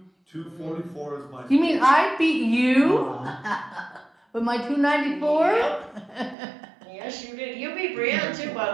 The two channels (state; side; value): drops out; left; at 6.4 s